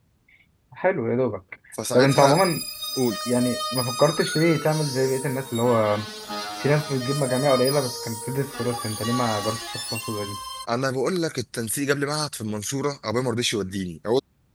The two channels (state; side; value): identical; both; correlation 1.00